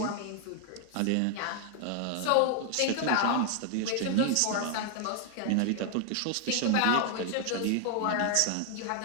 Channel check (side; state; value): both; different; correlation 0.00